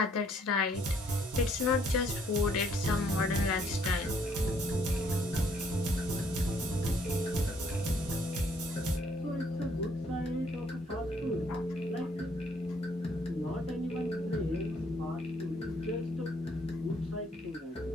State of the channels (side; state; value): both; normal; correlation 0.65